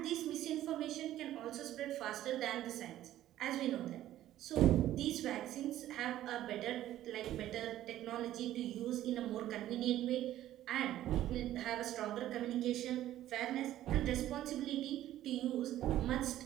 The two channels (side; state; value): left; quieter; 13.3 dB